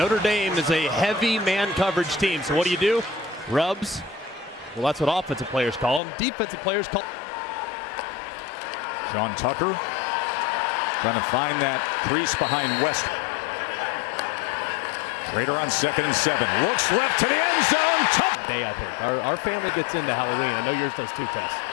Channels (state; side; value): drops out; right; at 6.0 s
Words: Dame is a heavy man coverage team. So what do? Rubs. Well, that's what offensive players call them. Defensive players call. Sean Tucker trying to find that crease behind West. Schrader on 2nd and 7. Looks left to the end zone. Tough day, I think. Our family gets into Halloween. I know yours does too, Tess.